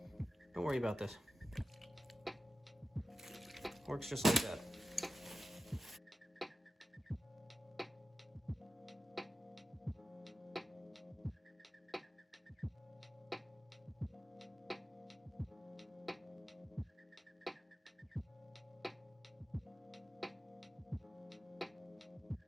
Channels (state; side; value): normal; both; correlation 0.93